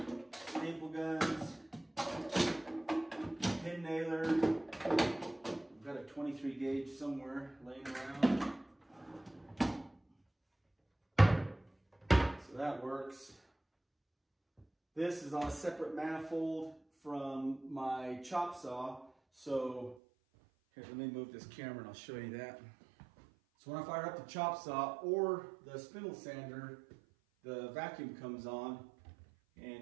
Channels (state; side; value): drops out; left; at 20.0 s